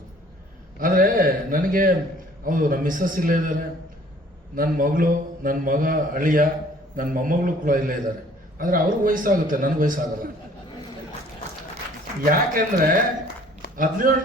ಆದರೆ ನನಗೆ ಹೌದು, ನಮ್ಮ ಮಿಸ್ಸಸ್ ಇಲ್ಲೇ ಇದ್ದಾರೆ, ನನ್ನ ಮಗಳು, ನನ್ನ ಮಗ, ಅಳಿಯ, ನನ್ನ ಮೊಮ್ಮಗಳು ಕೂಡ ಇಲ್ಲೇ ಇದ್ದಾರೆ. ಆದರೆ ಅವ್ರಿಗೆ ವಯಸ್ಸಾಗುತ್ತೆ, ನನಗೆ ವಯಸ್ಸಾಗಲ್ಲ. ಯಾಕೆಂದ್ರೆ 17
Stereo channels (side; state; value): both; normal; correlation 0.55